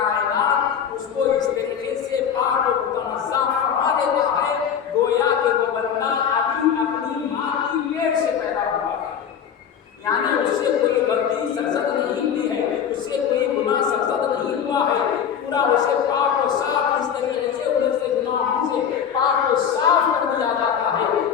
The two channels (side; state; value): right; quieter; 8.1 dB